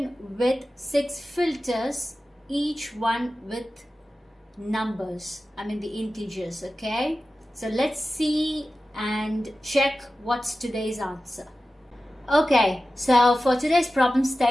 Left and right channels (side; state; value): both; normal; correlation 0.94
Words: with 6 filters, each one with numbers, the integers. Okay, so let's see and check what's today's answer. Okay, so for today's problem